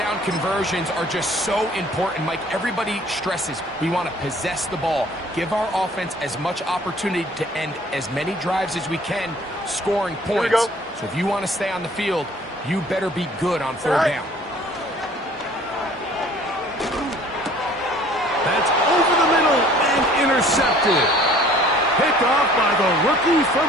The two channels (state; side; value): normal; both; correlation 0.53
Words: conversions are just so important, Mike. Everybody stresses we want to possess the ball. Give our offense as much opportunity to end as many drives as we can, scoring points. So if you want to stay on the field, you better be good on third down. That's over the middle and intercepted. Picked off by the rookie